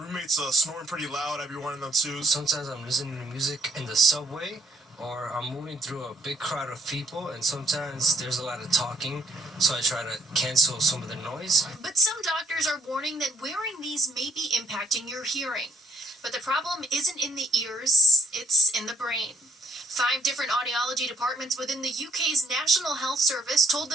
snoring pretty loud. I'd be wearing them too. Sometimes I'm listening to music in the subway, or I'm moving through a big crowd of people, and sometimes there's a lot of talking, so I try to cancel some of the noise. But some doctors are warning that wearing these may be impacting your hearing. But the problem isn't in the ears, it's in the brain. 5 different audiology departments within the UK's National Health Service told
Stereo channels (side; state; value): both; normal; correlation 0.66